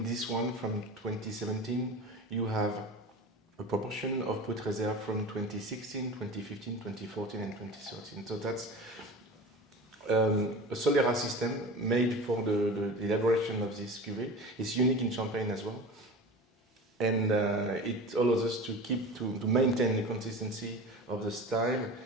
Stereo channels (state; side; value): normal; both; correlation 0.34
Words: this one from 2017, you have a proportion of Brut de Réserve from 2016, 2015, 2014, and 2013. So that's a Solera system made for the elaboration of this cuvée. It's unique in Champagne as well. And it allows us to maintain the consistency of the style